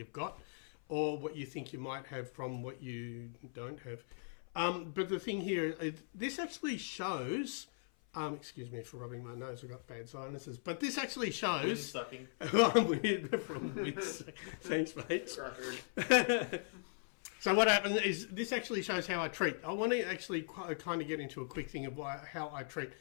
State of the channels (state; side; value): silent; right; 52 dB below the other